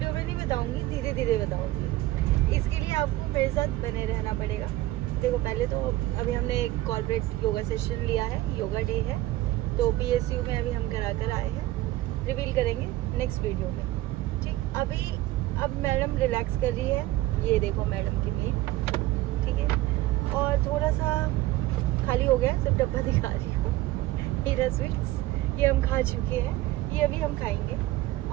में नहीं बताऊँगी, धीरे धीरे बताऊँगी। इसके लिए लिए आपको मेरे साथ बने रहना पड़ेगा। देखो पहले तो अभी हमने एक कॉर्पोरेट योगा सेशन लिया है, योगा डे है, तो PSU में अभी हम करा कर आए हैं, रिवील करेंगे नेक्स्ट वीडियो में। ठीक, अभी अब मैडम रिलैक्स कर रही है, ये देखो मैडम की मीट, ठीक है, और थोड़ा सा खाली हो गया, सिर्फ डब्बा दिखा रही हूँ। हीरा स्वीट्स ये हम खा चुके हैं, ये अभी हम खाएंगे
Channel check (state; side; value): quieter; left; 16.8 dB